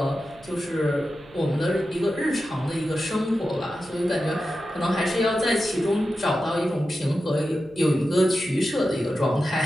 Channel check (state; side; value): noise; right; hum, 25 dB below the sound